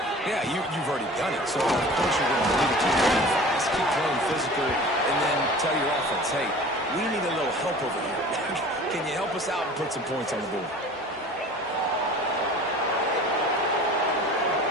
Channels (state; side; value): normal; both; correlation 0.42